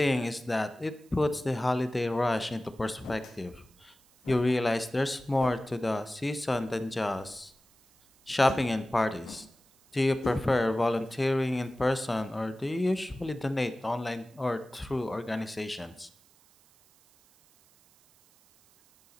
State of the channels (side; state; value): right; noise; hiss, 30 dB below the sound